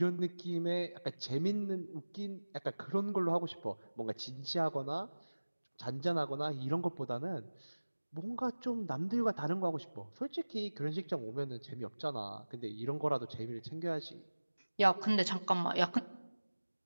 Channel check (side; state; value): both; inverted; correlation -1.00